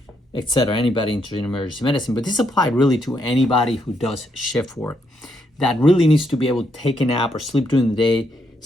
etc., anybody interested in emergency medicine. But this applied really to anybody who does shift work that really needs to be able to take a nap or sleep during the day,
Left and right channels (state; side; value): normal; both; correlation 0.77